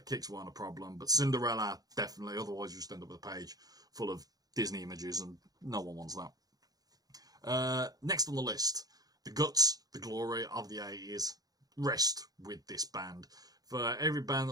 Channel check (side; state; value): left; late; 0.18 ms